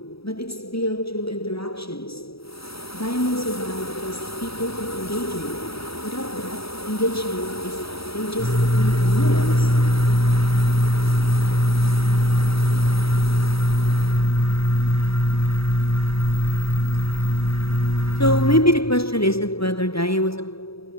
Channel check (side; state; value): right; late; 0.77 ms